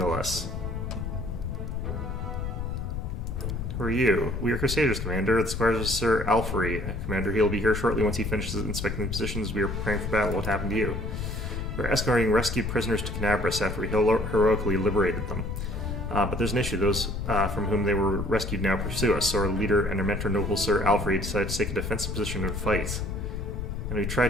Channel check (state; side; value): noise; left; rumble, 4 dB below the sound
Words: less. Who are you? We are Crusaders, Commander. The squires of Sir Ivory. Commander, he'll be here shortly once he finishes inspecting the positions. We are preparing for battle. What happened to you? We're escorting rescued prisoners to Canabras after we heroically liberated them. But there's an issue. Those from whom they were rescued now pursue us, so our leader and our mentor, noble Sir Ivory, decided to take a defensive position and fight. And we